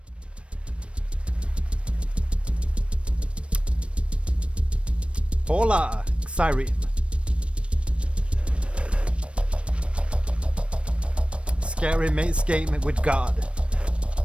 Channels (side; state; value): left; late; 0.060 ms